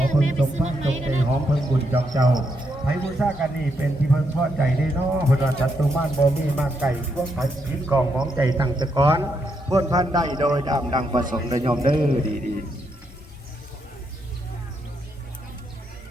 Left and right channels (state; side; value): normal; both; correlation 0.79